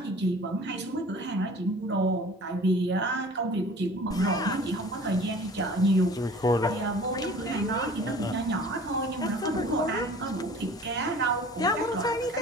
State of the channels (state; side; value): normal; both; correlation 0.46